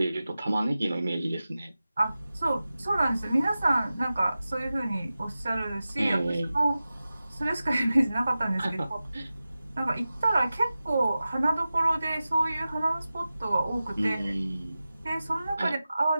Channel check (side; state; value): both; inverted; correlation -0.95